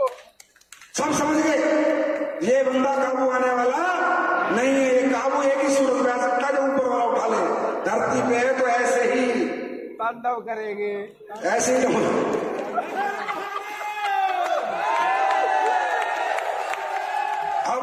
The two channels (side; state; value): both; identical; correlation 1.00